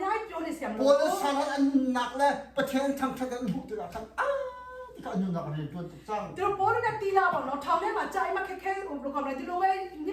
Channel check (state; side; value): identical; both; correlation 1.00